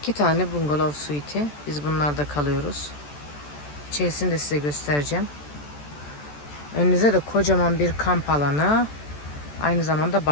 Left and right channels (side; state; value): right; late; 14 ms